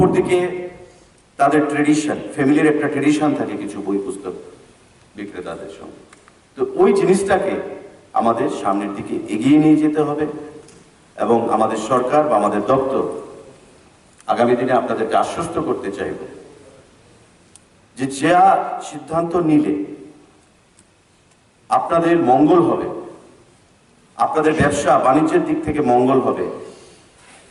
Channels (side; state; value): both; identical; correlation 1.00